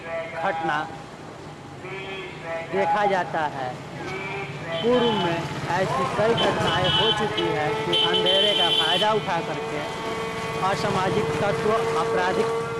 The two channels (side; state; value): both; identical; correlation 1.00